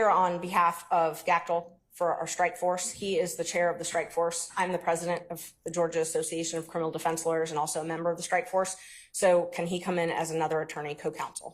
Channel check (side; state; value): both; identical; correlation 1.00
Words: on behalf of Gactel for our strike force. He is the chair of the strike force. I'm the president of the Georgia Association of Criminal Defense Lawyers and also a member of the strike force. So can he come in as another attorney